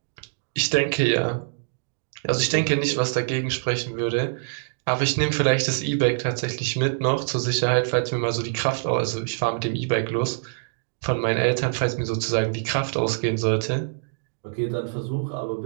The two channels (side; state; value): left; silent; digital silence